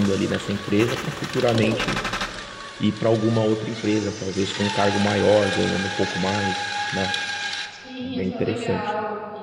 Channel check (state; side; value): identical; both; correlation 1.00